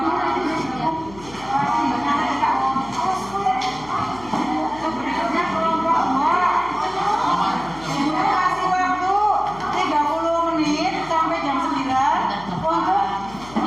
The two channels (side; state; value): left; noise; hum, 19 dB below the sound